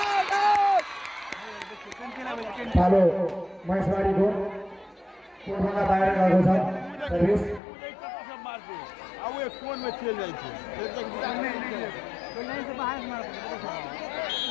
पालो महेशबारीको कोटभन्दा बाहिर गएको छ सर्भिस सब मारते अब ये कोन में चल जाई छे फिर तक लाइन से बाहर मार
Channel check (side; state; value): right; drops out; at 7.6 s